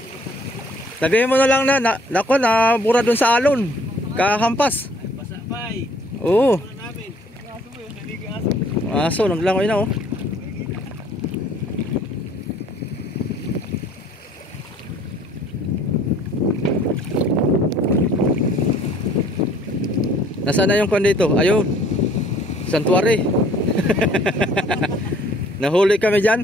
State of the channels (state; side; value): normal; both; correlation 0.57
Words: Sabihin mo na lang nako na bura dun sa alon. Kahampas. Basa pa eh. Oo. Wala namin. Aso mo yun, naligi aso. Aso, naglangoy na oh. Nasaan na yung kwan dito? Ayun. Santuary. Nahuli kami dyan.